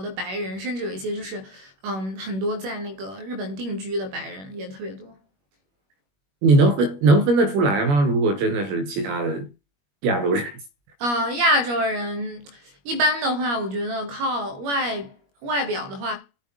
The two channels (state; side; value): late; left; 21 ms